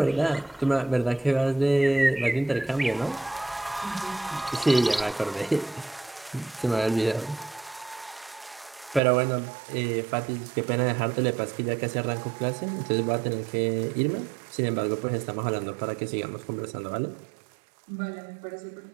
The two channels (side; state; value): left; drops out; at 9.0 s